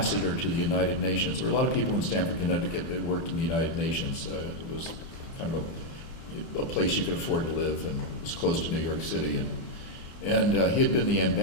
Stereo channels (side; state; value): right; late; 24 ms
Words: to the United Nations. There were a lot of people in Stamford, Connecticut that worked in the United Nations. It was kind of a place you could afford to live, and it was close to New York City. And he had been the